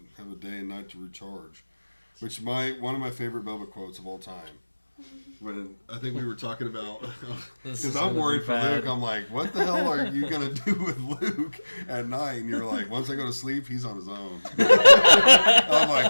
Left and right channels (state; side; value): inverted; both; correlation -1.00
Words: day and night to recharge. Which one of my favorite Bubba quotes of all time. When I think we were talking about, This because is I'm gonna worried be for bad. Luke. I'm like, what the hell are you gonna do with Luke at night? And you're like, once I go to sleep, he's on his own. I'm